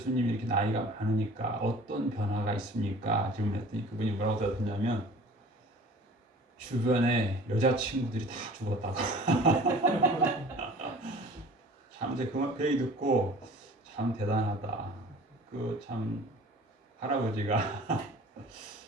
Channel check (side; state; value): both; normal; correlation 0.45